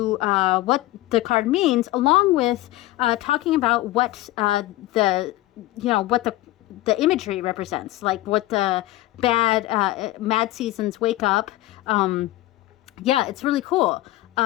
what the card means, along with talking about what the imagery represents, like what the mad seasons wake up. Yeah, it's really cool.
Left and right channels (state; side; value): quieter; right; 17.2 dB